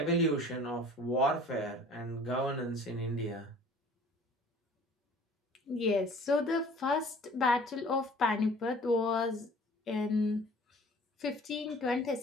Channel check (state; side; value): normal; both; correlation 0.49